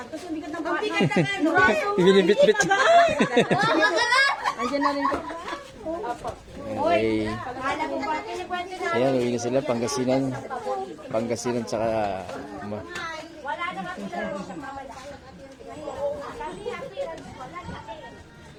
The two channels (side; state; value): both; identical; correlation 1.00